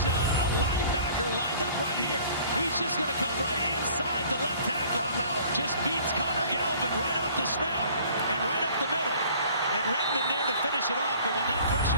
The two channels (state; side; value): inverted; both; correlation -0.52